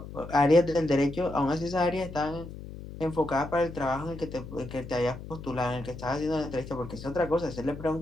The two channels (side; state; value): left; noise; hum, 12 dB below the sound